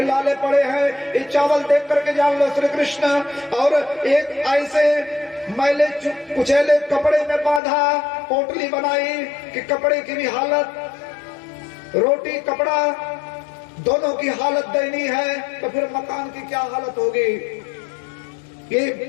लाले पड़े हैं, ये चावल देख करके जान लो श्री कृष्ण। और एक ऐसे मैले कुचैले कपड़े में बांधा पोटली बनाई कि कपड़े की भी हालत, रोटी कपड़ा दोनों की हालत दयनीय है, तो फिर मकान की क्या हालत होगी। ये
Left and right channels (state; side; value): drops out; right; at 7.6 s